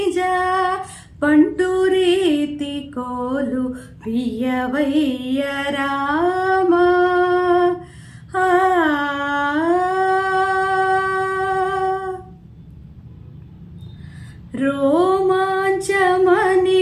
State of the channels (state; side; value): identical; both; correlation 1.00